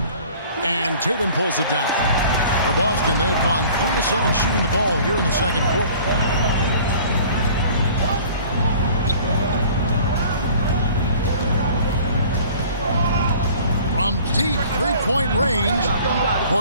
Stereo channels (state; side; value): inverted; both; correlation -0.49